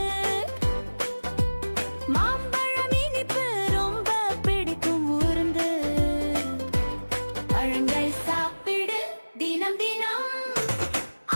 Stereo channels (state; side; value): inverted; both; correlation -1.00